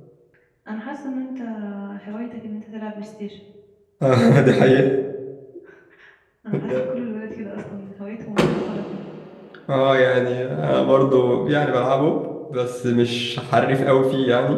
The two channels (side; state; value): both; identical; correlation 1.00